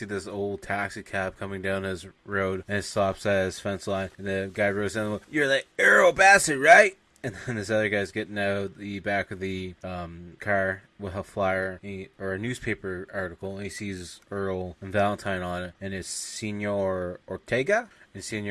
this old taxi cab coming down his road, and it stops at his fence line, and the guy rows in. "You're the Earl Bassett, right?" And then this other guy's getting out of the back of the car with a flyer or a newspaper article, and he sees Earl and Valentine on it, and it's Senor Ortega. And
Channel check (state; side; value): identical; both; correlation 1.00